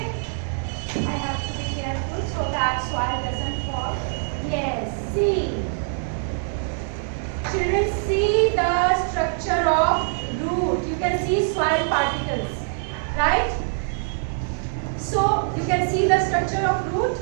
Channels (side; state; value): left; silent; digital silence